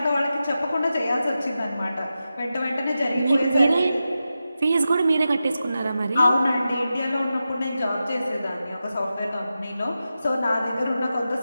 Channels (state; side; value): inverted; both; correlation -0.91